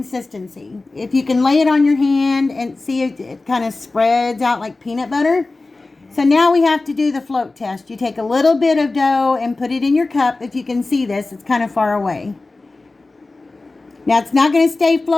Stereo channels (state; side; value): quieter; right; 3.3 dB